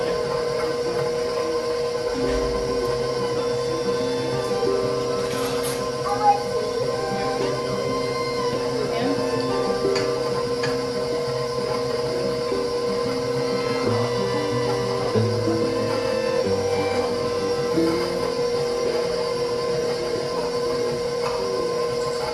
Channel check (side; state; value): both; identical; correlation 1.00